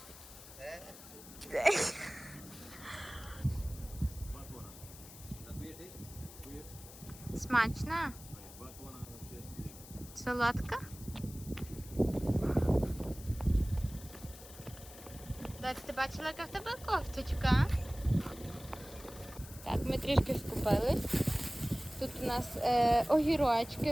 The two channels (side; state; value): left; noise; hiss, 17 dB below the sound